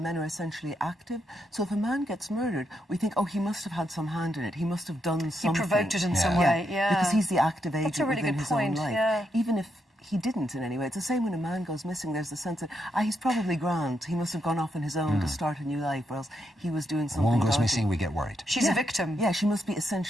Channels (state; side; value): normal; both; correlation 0.80